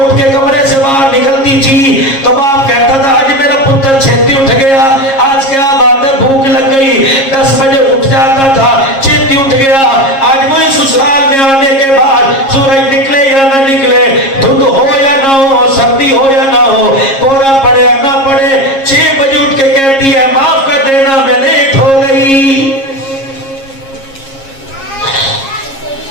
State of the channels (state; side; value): late; right; 7.4 ms